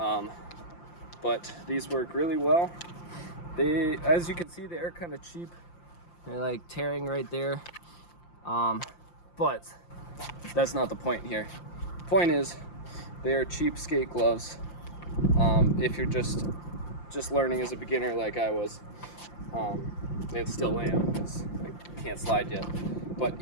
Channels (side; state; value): right; late; 5.8 ms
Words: But these work really well. They, as you can see, they are kind of cheap. They're like tearing right there. But that's not the point here. The point is, they are cheap skate gloves. If you're just learning as a beginner like I was, and still am, because I can't slide yet. But